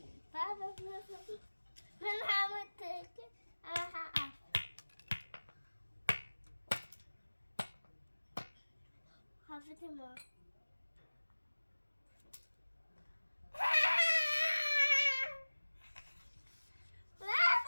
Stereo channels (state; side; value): inverted; both; correlation -1.00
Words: Baba, ben hamur teke. Aha. Hafifim o.